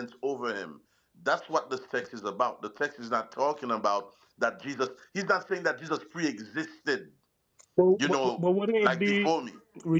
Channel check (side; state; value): both; identical; correlation 1.00